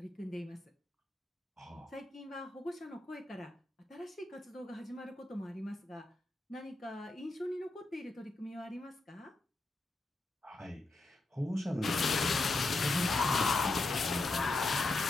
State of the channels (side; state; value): right; quieter; 3.1 dB